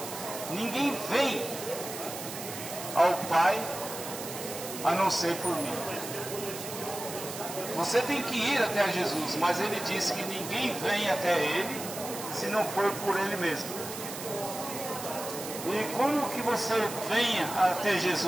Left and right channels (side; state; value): right; noise; hiss, 9 dB below the sound